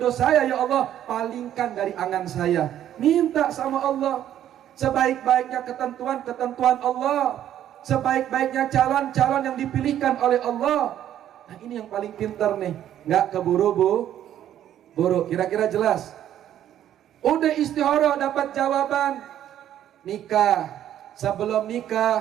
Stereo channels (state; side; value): quieter; left; 11.2 dB